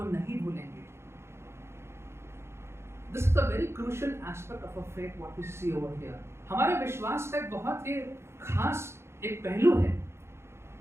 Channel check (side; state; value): left; late; 0.13 ms